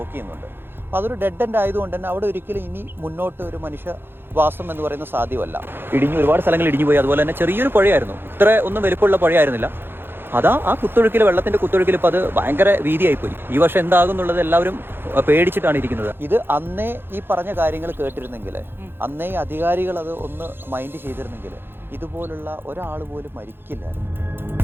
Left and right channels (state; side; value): late; left; 0.10 ms